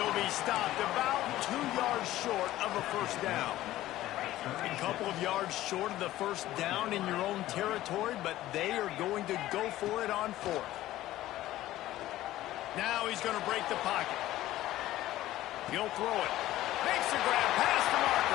be stopped about 2 yards short of a first down. A couple of yards short of the first down in your own territory, but they are going to go for it on fourth. Now he's going to break the pocket. He'll throw it. Makes the grab past the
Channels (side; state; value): right; quieter; 15.0 dB